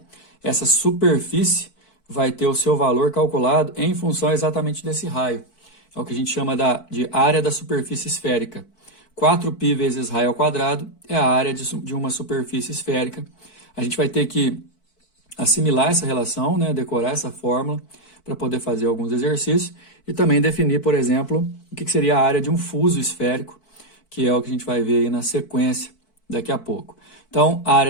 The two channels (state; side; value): late; right; 4.6 ms